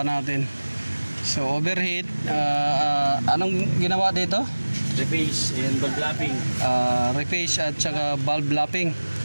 natin. So overheat. Anong ginawa dito? Reface and valve lapping. Reface at saka valve lapping.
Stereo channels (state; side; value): inverted; both; correlation -1.00